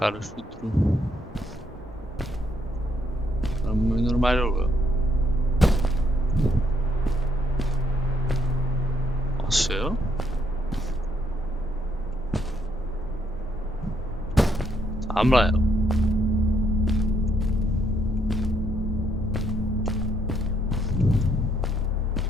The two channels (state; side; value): normal; both; correlation 0.72